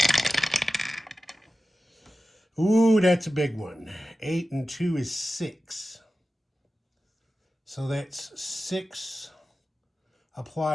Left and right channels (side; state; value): both; normal; correlation 0.94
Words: Ooh, that's a big one. 8 and 2 is 6. So that's 6.